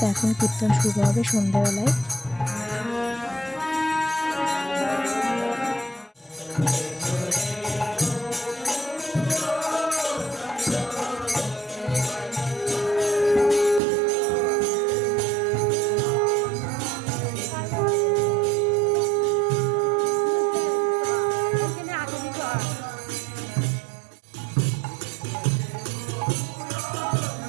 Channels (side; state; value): left; drops out; at 13.8 s